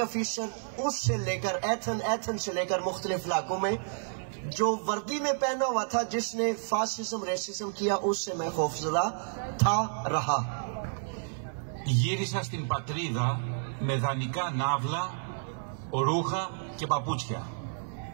ऑफिसर उससे लेकर एथन से लेकर मुख्तलिफ इलाकों में जो वर्दी में पहना हुआ था, जिसने फासिज्म रेसिज्म किया, उससे मैं खौफजदा था रहा। Γύρισα στην πατρίδα με δανεικά ναύλα, ρούχα και παπούτσια.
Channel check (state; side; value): silent; left; 55 dB below the other